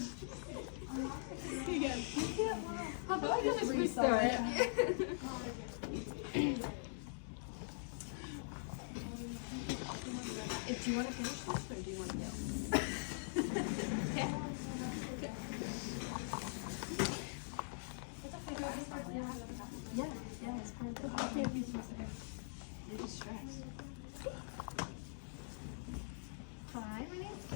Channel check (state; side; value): silent; right; digital silence